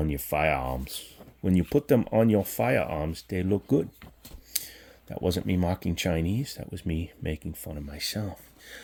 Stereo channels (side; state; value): both; identical; correlation 1.00